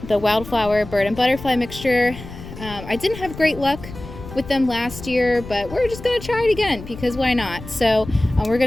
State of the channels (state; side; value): noise; left; rumble, 13 dB below the sound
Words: the wildflower bird and butterfly mixture. I didn't have great luck with them last year, but we're just gonna try it again because why not? So we're